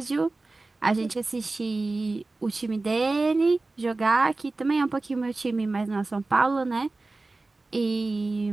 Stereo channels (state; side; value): quieter; left; 3.3 dB